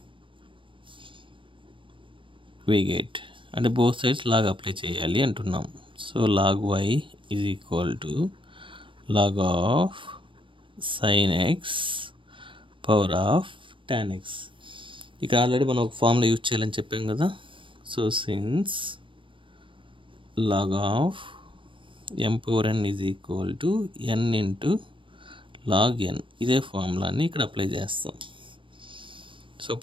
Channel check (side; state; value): left; late; 0.25 ms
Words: we get, అంటే both sides log అప్లై చేయాలి అంటున్నాం. So log y is equal to log of sin x power of tan x. ఇక్కడ ఆల్రెడీ మనం ఒక ఫార్ములా యూజ్ చేయాలని చెప్పాం కదా. So since log of m power n is equal to n into log n, ఇదే ఫార్ములాని ఇక్కడ అప్లై చేస్తాం. సో